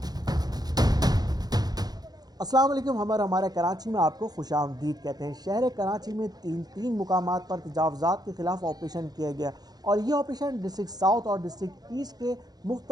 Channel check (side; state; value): left; late; 0.19 ms